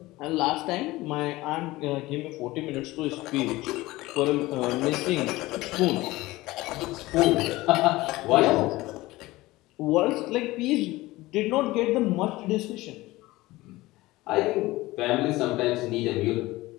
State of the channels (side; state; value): right; quieter; 19.1 dB